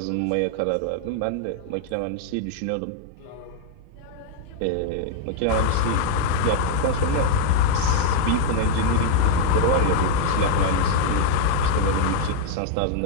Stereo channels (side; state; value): both; different; correlation -0.01